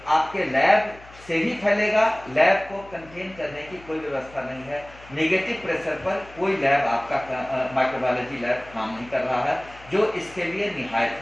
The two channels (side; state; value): left; noise; hum, 22 dB below the sound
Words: आपके लैब से ही फैलेगा। लैब को कंटेन करने की कोई व्यवस्था नहीं है। नेगेटिव प्रेशर पर कोई लैब आपका माइक्रोबायोलॉजी लैब काम नहीं कर रहा है, जो इसके लिए निहायत